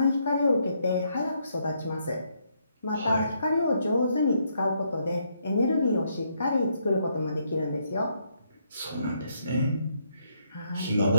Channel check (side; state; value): both; inverted; correlation -0.74